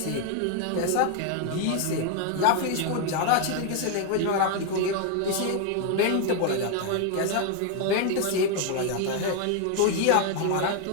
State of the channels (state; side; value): different; both; correlation 0.01